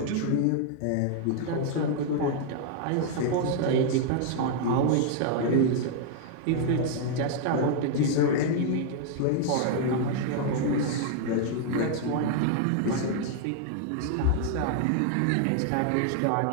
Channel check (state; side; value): different; both; correlation 0.00